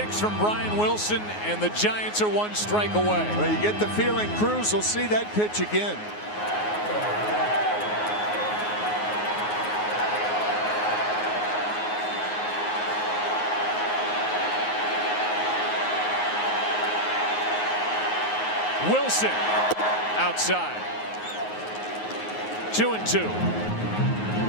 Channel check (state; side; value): late; right; 9.5 ms